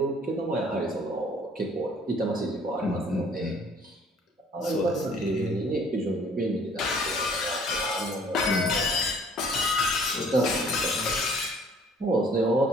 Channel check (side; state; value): both; normal; correlation 0.56